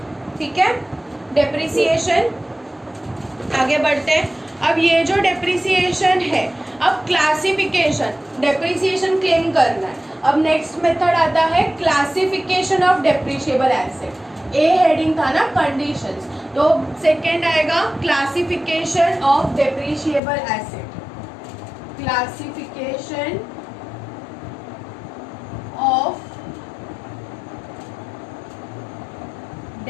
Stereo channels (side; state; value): right; drops out; at 20.2 s